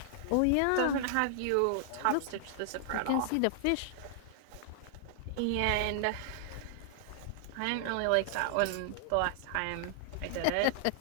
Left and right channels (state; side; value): different; both; correlation -0.01